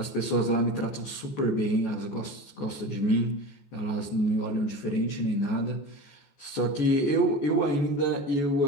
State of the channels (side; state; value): right; late; 14 ms